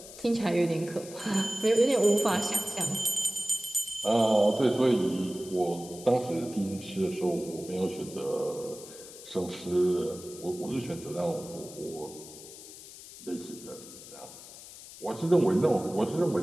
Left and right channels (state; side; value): noise; left; hiss, 16 dB below the sound